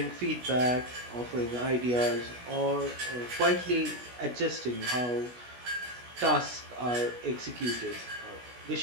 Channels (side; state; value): left; late; 16 ms